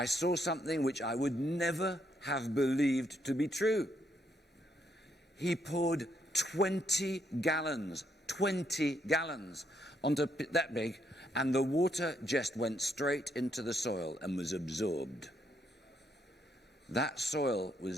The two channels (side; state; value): both; normal; correlation 0.75